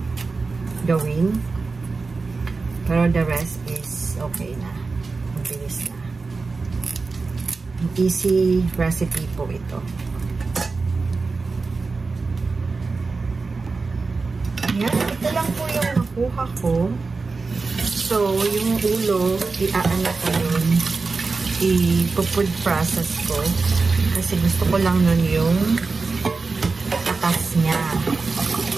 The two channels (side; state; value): left; quieter; 4.1 dB